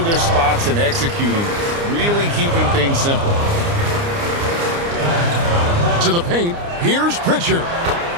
their spots and executing, really keeping things simple. To the paint, here's Pritchard.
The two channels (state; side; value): late; left; 29 ms